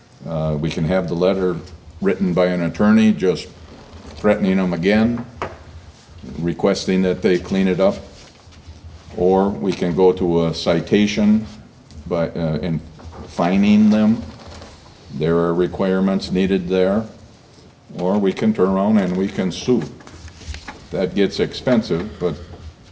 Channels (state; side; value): identical; both; correlation 1.00